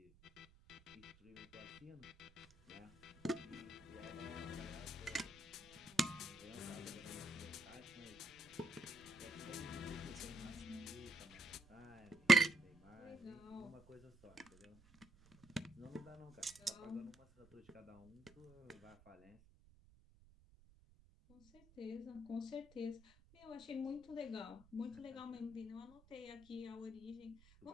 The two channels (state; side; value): noise; right; rumble, 25 dB below the sound